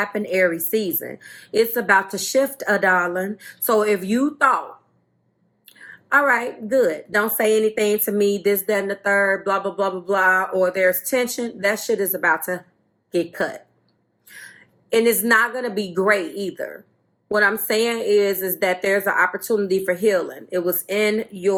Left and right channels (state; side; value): identical; both; correlation 1.00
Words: Aries season. It's about to shift, darling. So if you thought, all right, good, don't say anything to me, this, that, and the third, blah, blah, blah, blah, blah, or there's tension, that shit is about to get cut. And it's not going to be great either. What I'm saying is that there's an opportunity for healing. It was in